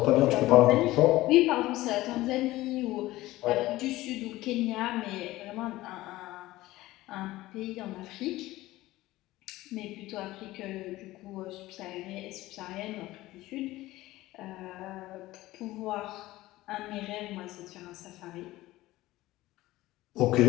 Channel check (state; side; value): quieter; right; 17.4 dB